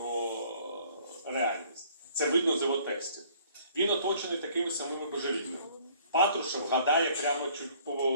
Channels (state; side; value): inverted; both; correlation -0.57